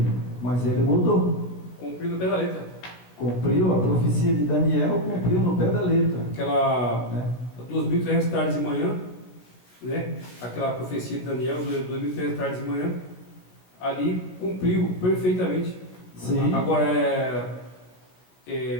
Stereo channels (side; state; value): right; late; 17 ms